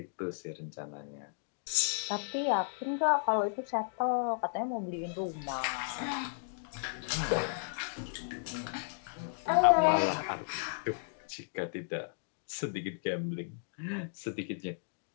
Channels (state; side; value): silent; right; digital silence